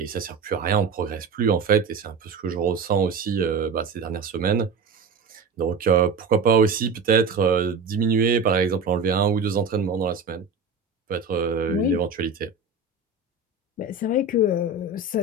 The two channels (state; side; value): quieter; left; 4.3 dB